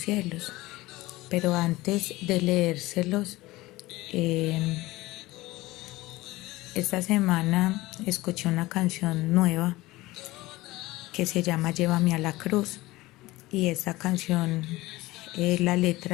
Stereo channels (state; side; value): quieter; right; 19.2 dB